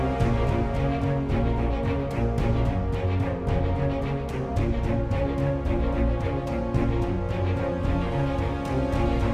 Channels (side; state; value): both; identical; correlation 1.00